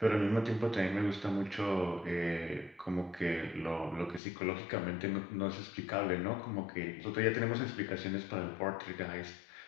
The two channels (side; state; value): right; drops out; at 4.2 s